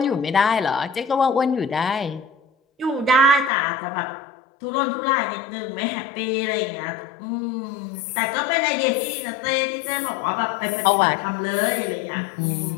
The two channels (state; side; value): drops out; right; at 3.5 s